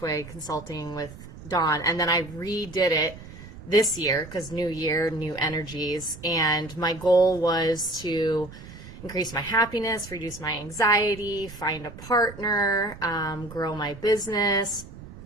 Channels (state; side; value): noise; right; rumble, 15 dB below the sound